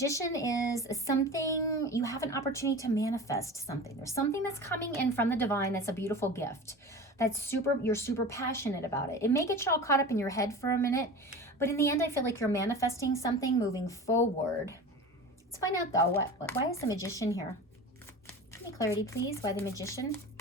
is something, you have an opportunity to manifest something. There's something that's coming in from the divine that's a beautiful gift. You're super passionate about it. It may get you all caught up in your head for a minute, but in the end, I feel like you're manifesting something moving forward. Let's find out, though, why is the Magician here? Give me clarity, please. Why the Magician?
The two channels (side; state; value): both; normal; correlation 0.33